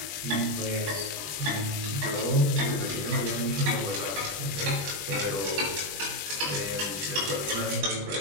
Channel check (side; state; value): left; late; 20 ms